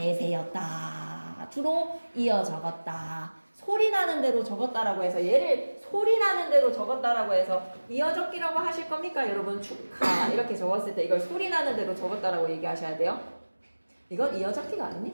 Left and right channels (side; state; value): both; inverted; correlation -1.00